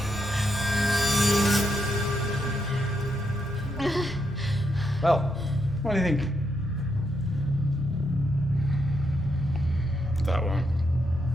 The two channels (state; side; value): normal; both; correlation 0.80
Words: Well, what do you think? That one.